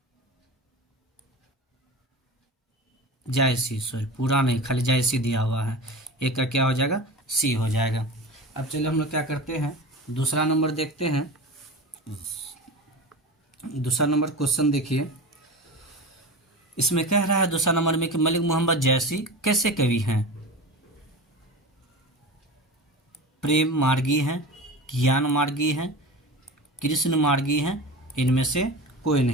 सॉरी पूरा नहीं, खाली जायसी दिया हुआ है। 1 का क्या हो जाएगा, सी हो जाएगा। अब चलिए हम लोग क्या करते हैं, दूसरा नंबर देखते हैं। दूसरा नंबर क्वेश्चन देखिए, इसमें कह रहा है दूसरा नंबर में कि मलिक मोहम्मद जायसी कैसे कवि हैं? प्रेम मार्गी हैं, ज्ञान मार्गी हैं, कृष्ण मार्गी हैं, इनमें से कोई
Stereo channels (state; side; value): normal; both; correlation 0.30